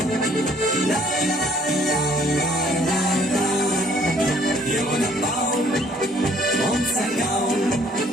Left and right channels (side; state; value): both; normal; correlation 0.61